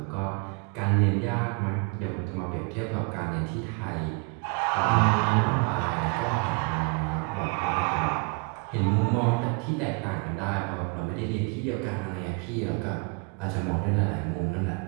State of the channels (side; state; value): left; quieter; 31.9 dB